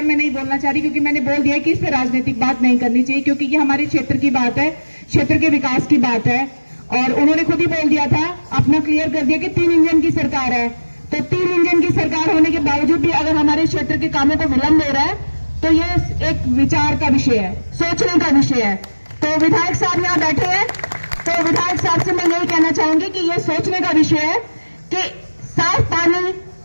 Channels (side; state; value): both; inverted; correlation -1.00